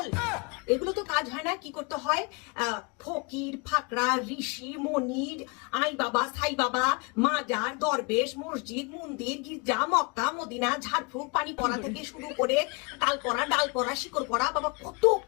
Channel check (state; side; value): quieter; right; 30.9 dB